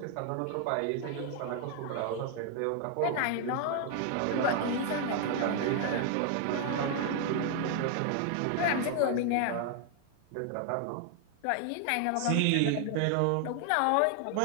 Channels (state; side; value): different; both; correlation 0.00